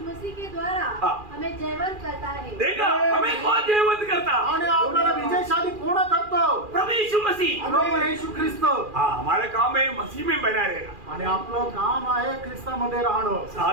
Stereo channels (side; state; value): left; late; 2.4 ms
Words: मसीह के द्वारा हमें जयवंत करता है। देखा हमें कौन जयवंत करता? आणि आपल्याला विजयशाली कोण करतो? प्रभु यीशु मसीह, प्रभू येशू ख्रिस्त। हाँ हमारा काम है मसीह में बना रहेगा, आणि आपलं काम आहे ख्रिस्तामध्ये राहणं,